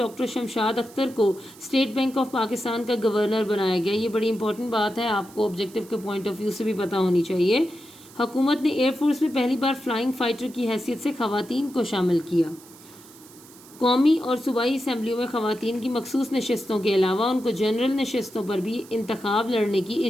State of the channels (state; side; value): noise; right; hiss, 22 dB below the sound